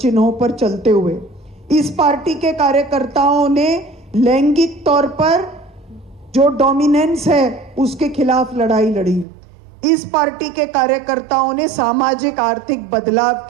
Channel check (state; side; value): drops out; left; at 9.2 s